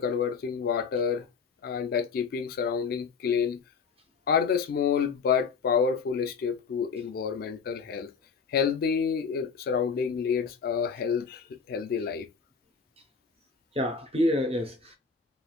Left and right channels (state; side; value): quieter; right; 5.5 dB